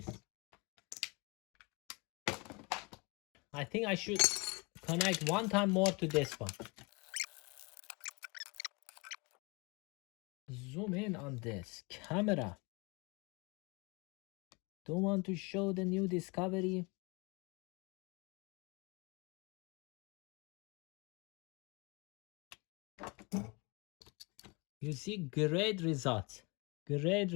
I think I should connect one time more to this one. Zoom in on this camera. Don't want to show the new discovery. You see, great results. Great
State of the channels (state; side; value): quieter; right; 28.5 dB